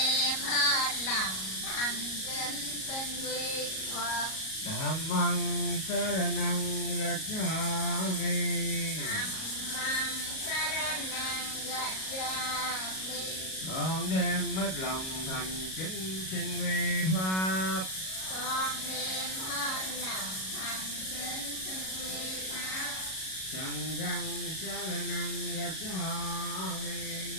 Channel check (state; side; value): late; right; 37 ms